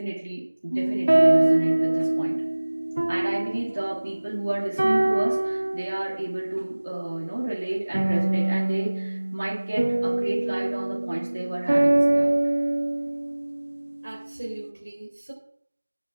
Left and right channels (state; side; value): inverted; both; correlation -1.00